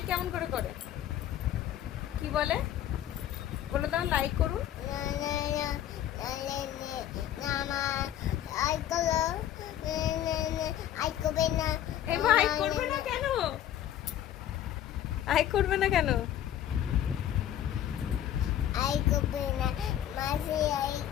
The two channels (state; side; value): quieter; right; 11.4 dB